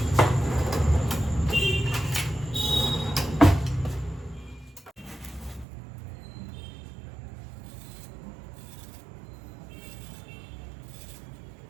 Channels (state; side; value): drops out; left; at 5.7 s